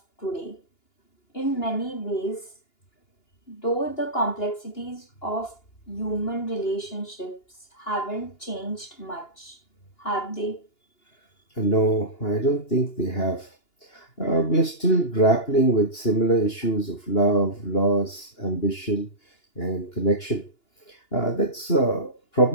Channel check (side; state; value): right; late; 2.9 ms